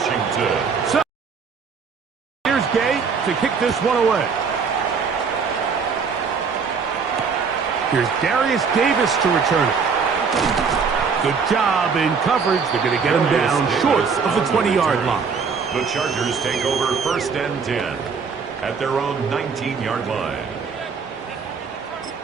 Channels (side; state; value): left; quieter; 5.6 dB